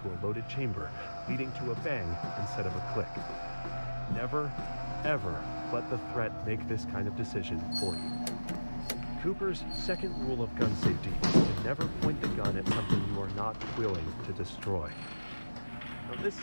a loaded chamber, leading to a bang instead of a click. Never, ever let the threat make this kind of decision for you. Cooper's second rule of gun safety is to never point the gun at something you are not willing to destroy. Now, this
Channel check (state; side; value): inverted; both; correlation -1.00